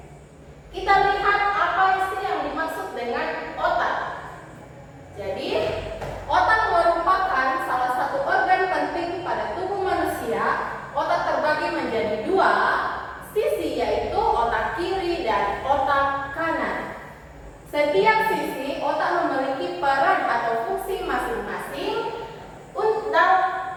kita lihat apa sih yang dimaksud dengan otak. Jadi, otak merupakan salah satu organ penting pada tubuh manusia. Otak terbagi menjadi dua sisi, yaitu otak kiri dan otak kanan. Setiap sisi otak memiliki peran atau fungsi masing-masing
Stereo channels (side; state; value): both; identical; correlation 1.00